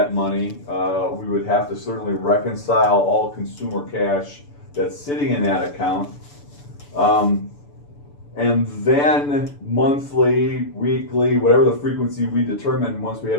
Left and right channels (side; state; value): right; late; 6.9 ms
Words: money. We would have to certainly reconcile all consumer cash that's sitting in that account. And then monthly, weekly, whatever the frequency we determine once we